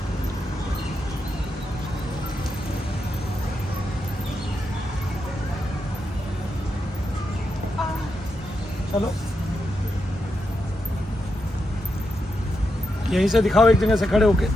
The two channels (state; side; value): normal; both; correlation 0.85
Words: चलो यहीं से दिखाओ, एक जगह से खड़े होके